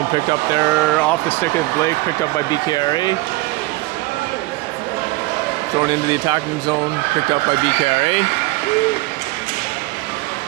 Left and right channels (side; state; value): left; quieter; 21.3 dB